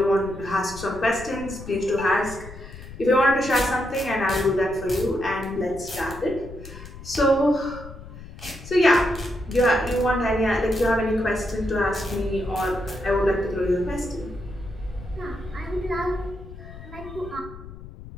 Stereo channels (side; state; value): left; noise; rumble, 14 dB below the sound